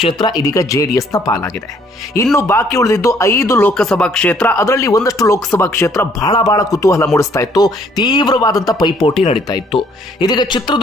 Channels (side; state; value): both; normal; correlation 0.63